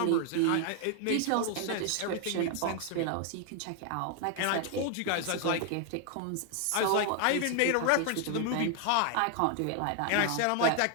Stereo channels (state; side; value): different; both; correlation 0.00